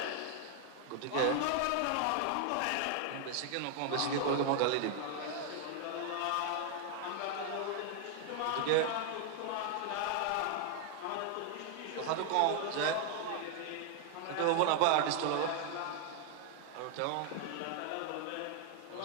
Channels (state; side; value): different; both; correlation 0.00